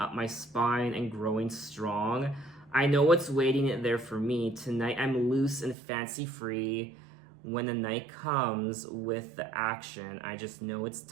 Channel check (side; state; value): left; drops out; at 5.8 s